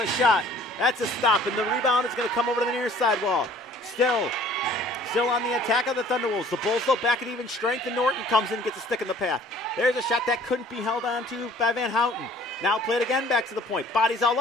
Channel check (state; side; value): normal; both; correlation 0.53